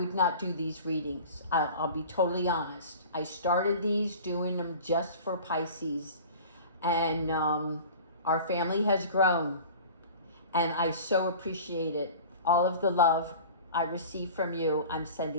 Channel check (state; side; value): inverted; both; correlation -0.40